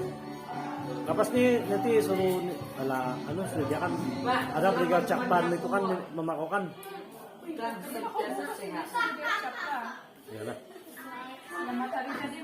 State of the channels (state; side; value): identical; both; correlation 1.00